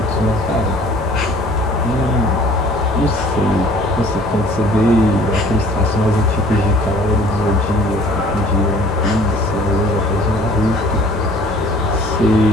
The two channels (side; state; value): both; normal; correlation 0.52